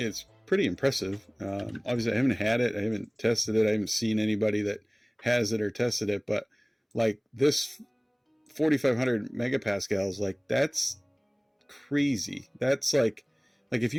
pretty impressive. Obviously I haven't had it, I haven't tested it, I haven't seen anybody that has it or tested it, but like this 4,500 megapascals, like that's crazy. That's like if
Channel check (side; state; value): both; identical; correlation 1.00